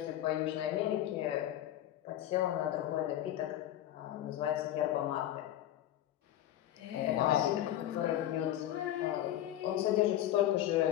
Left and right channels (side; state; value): right; quieter; 12.6 dB